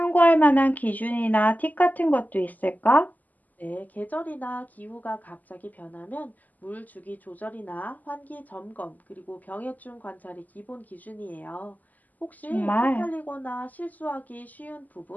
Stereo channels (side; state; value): right; late; 0.081 ms